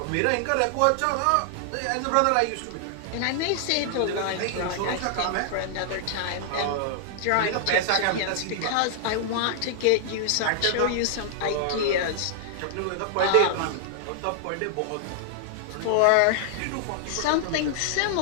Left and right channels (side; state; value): both; different; correlation 0.00